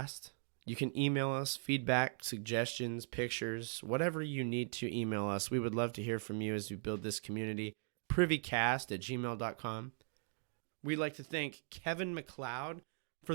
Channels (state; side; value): silent; left; digital silence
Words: You can email us feedback, suggestions, pictures, whatever you need to email us. We would love to hear from you as we build this community. Privycast@gmail.com. We'd like to thank Kevin MacLeod for